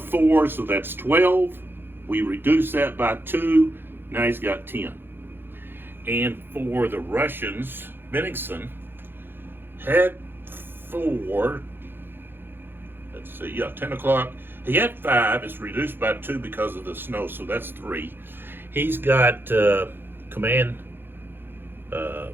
so that's 12. We reduce that by 2. Now he's got 10. And for the Russians, Bennigsen had 4. Let's see, yeah, 10 o'clock. He had 5. It's reduced by 2 because of the snow, so that's 3. He's got command.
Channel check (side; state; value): left; late; 0.10 ms